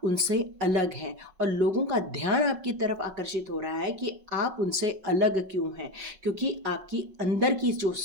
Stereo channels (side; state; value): left; late; 5.3 ms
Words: उनसे अलग हैं और लोगों का ध्यान आपकी तरफ आकर्षित हो रहा है कि आप उनसे अलग क्यों हैं, क्योंकि आपकी अंदर की जो